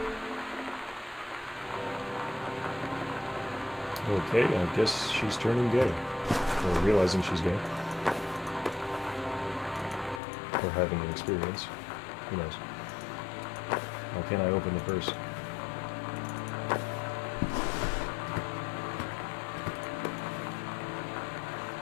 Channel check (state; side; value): drops out; right; at 10.2 s